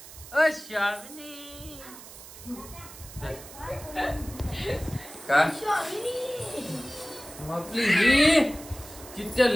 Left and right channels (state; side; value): noise; right; hiss, 16 dB below the sound